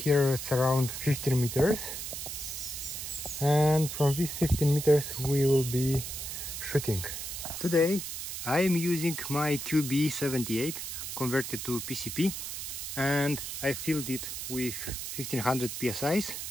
it's around 15 meters, and from these 15 meters we will be shooting. Today I am using my QB78 converted to PCP, and I filled it with 1500 psi's,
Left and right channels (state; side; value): noise; right; hiss, 6 dB below the sound